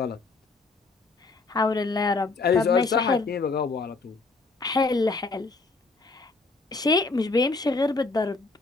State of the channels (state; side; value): quieter; right; 3.8 dB